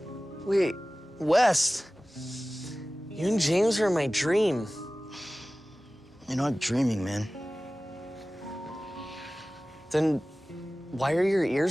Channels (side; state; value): both; normal; correlation 0.97